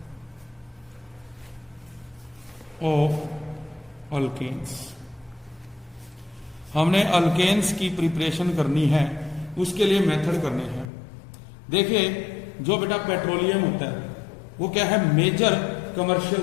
of alkanes. हमने अल्केन्स की प्रिपरेशन करनी है, उसके लिए मेथड करने हैं। देखिए जो बेटा पेट्रोलियम होता है वो क्या है, मेजर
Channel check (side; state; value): right; drops out; at 10.9 s